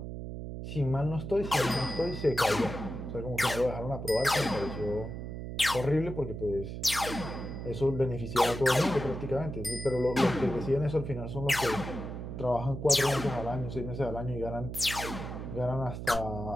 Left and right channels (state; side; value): noise; right; hum, 7 dB below the sound